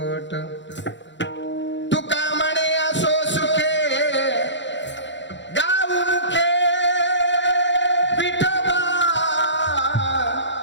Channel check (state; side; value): late; right; 0.53 ms